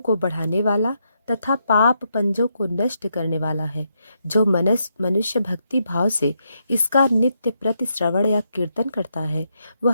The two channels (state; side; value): inverted; both; correlation -0.80